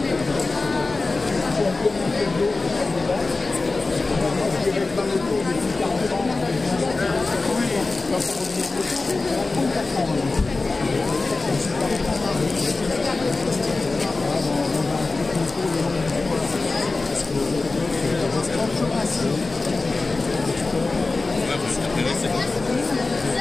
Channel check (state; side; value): quieter; right; 3.5 dB